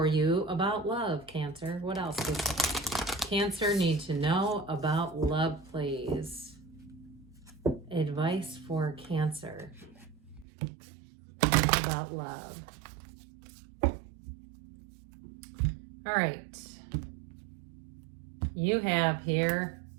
you about love, Cancer. What else does Cancer need to know about love, please? Advice for Cancer about love. All right. You have here,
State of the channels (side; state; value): left; drops out; at 10.5 s